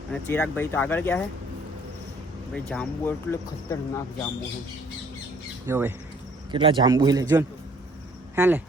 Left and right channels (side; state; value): both; normal; correlation 0.59